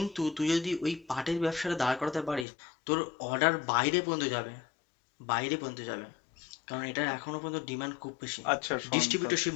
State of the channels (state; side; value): drops out; right; at 2.5 s